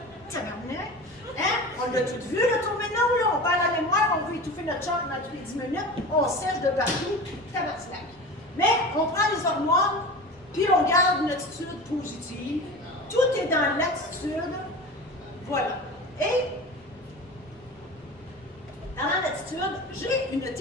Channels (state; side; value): normal; both; correlation 0.33